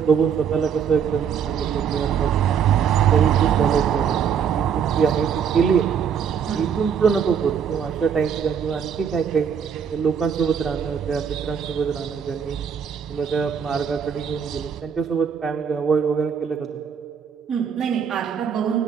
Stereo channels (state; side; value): quieter; left; 7.4 dB